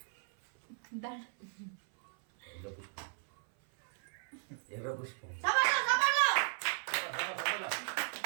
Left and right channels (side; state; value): left; silent; 54 dB below the other